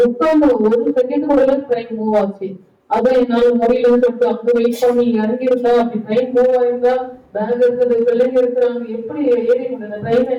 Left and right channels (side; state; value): both; identical; correlation 1.00